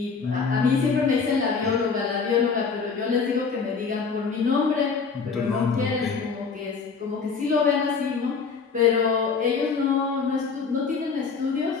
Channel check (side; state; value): right; quieter; 5.3 dB